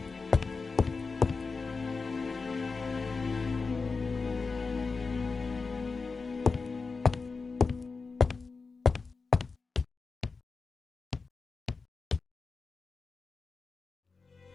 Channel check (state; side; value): quieter; right; 4.4 dB